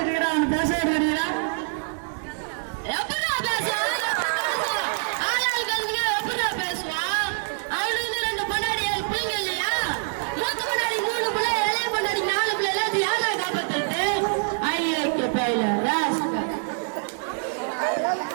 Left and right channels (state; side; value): silent; left; 57 dB below the other